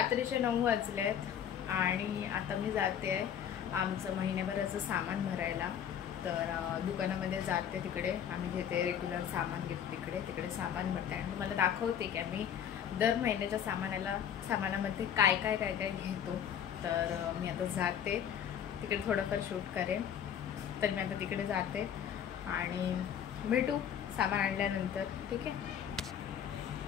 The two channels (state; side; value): quieter; right; 9.0 dB